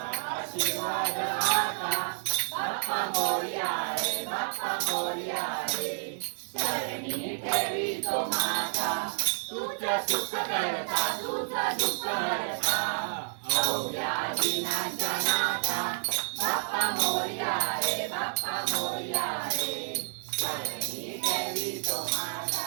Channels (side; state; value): left; silent; digital silence